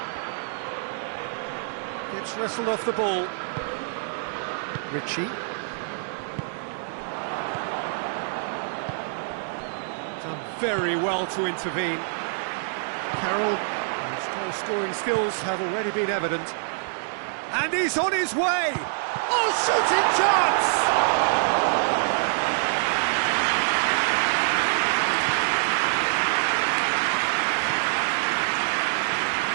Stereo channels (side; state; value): left; silent; digital silence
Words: Gets wrestled off the ball. Ritchie. Done very well to intervene. Carroll, whose goal-scoring skills have already been evident. And he's on his way! Oh, shooting chance!